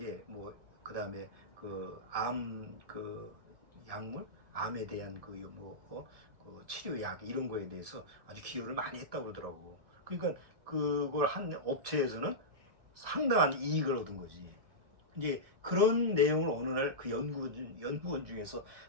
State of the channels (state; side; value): late; left; 1.7 ms